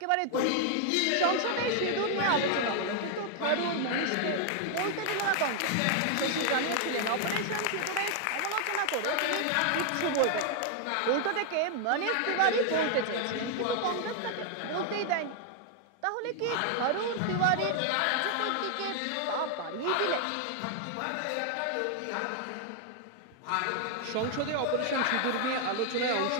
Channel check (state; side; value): different; both; correlation 0.00